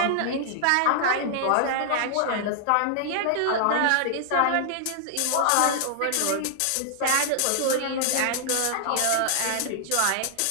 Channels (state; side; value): different; both; correlation -0.01